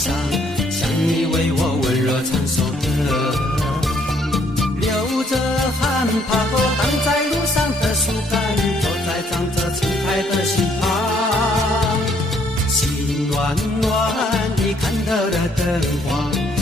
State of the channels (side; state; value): both; normal; correlation 0.67